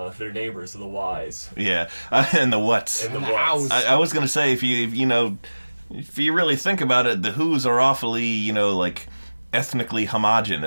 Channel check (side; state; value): both; inverted; correlation -1.00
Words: neighbors, the Whys. Yeah, and the Whats. And the Hows. Whats. I was going to say, if you really think about it, the Who's are awfully, like, ethnically